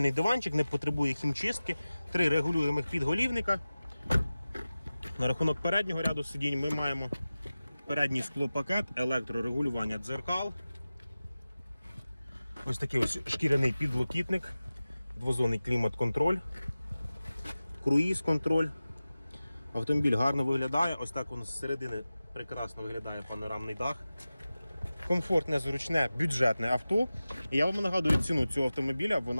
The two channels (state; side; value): inverted; both; correlation -0.96